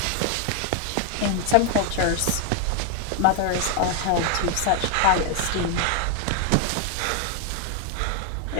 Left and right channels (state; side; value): different; both; correlation 0.00